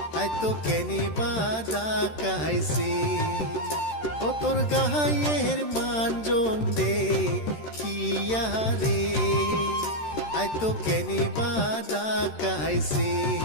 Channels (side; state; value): right; late; 13 ms